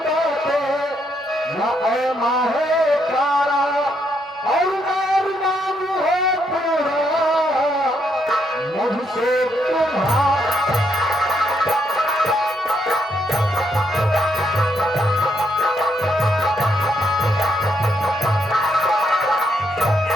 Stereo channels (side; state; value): both; normal; correlation 0.76